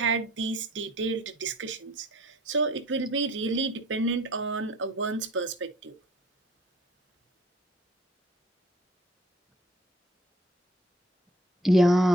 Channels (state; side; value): normal; both; correlation 0.54